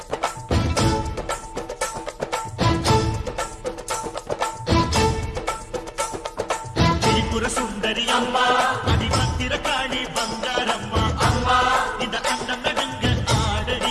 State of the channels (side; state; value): both; identical; correlation 1.00